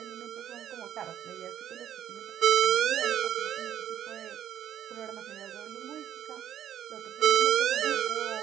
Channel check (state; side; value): quieter; left; 10.5 dB